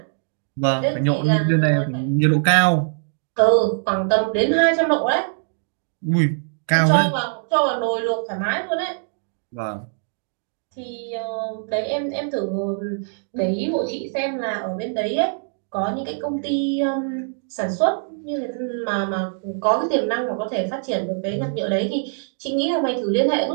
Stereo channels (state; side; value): silent; left; digital silence